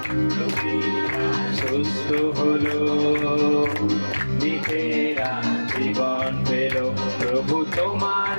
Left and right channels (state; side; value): inverted; both; correlation -1.00